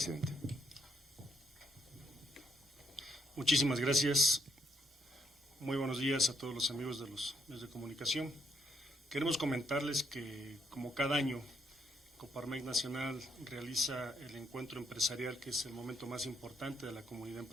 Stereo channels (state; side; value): normal; both; correlation 0.73